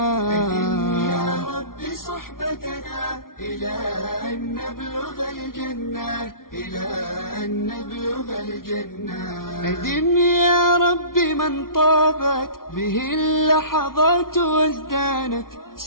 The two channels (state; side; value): late; right; 0.92 ms